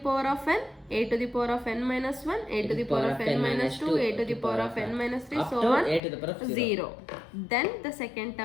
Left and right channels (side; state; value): right; drops out; at 6.0 s